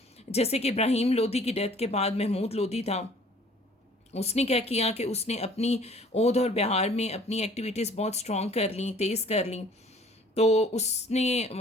जैसे कि इब्राहिम लोदी की डेथ के बाद महमूद लोदी था, उसने क्या किया कि उसने अपनी ओध और बिहार में अपनी एक्टिविटीज़ बहुत स्ट्रॉन्ग कर ली, तेज़ कर ली. तो उसने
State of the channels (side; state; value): both; normal; correlation 0.53